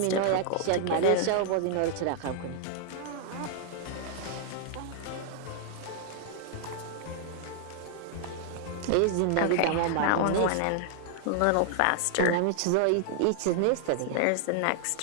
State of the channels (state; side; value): different; both; correlation 0.00